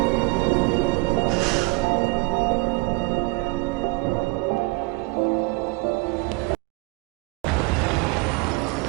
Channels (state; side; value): quieter; left; 25.8 dB